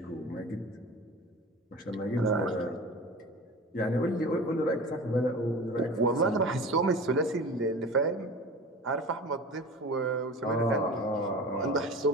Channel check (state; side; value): normal; both; correlation 0.36